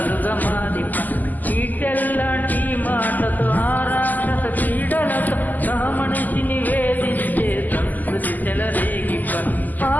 మారిప, చీటెల్లాంటి మాటతో ఆరాక్షస క్రీడలతో సహమనిషిని వేధించే సంస్కృతి చెలరేగిప,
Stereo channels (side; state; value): right; late; 0.083 ms